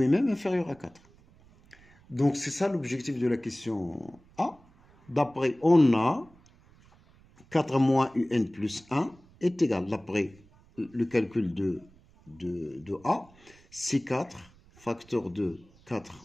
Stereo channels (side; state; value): right; noise; rumble, 27 dB below the sound